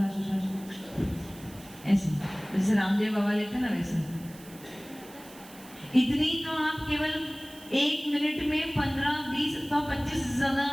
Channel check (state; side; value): noise; right; hiss, 20 dB below the sound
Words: ऐसे जैसे रामदेव बाबा लेते ना वैसे। इतनी तो आप केवल 1 मिनट में 15, 20 अथवा 25 से ज्यादा